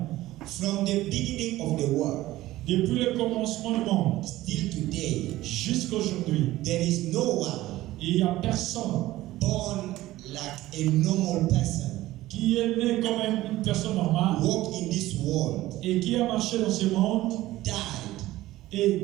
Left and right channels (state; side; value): quieter; left; 16.4 dB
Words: From the beginning of the world, Depuis le commencement du monde still today, jusqu'à aujourd'hui, there is no one il n'y a personne born like a normal person, qui est né comme une personne normale walk in this world, et qui a marché dans ce monde died,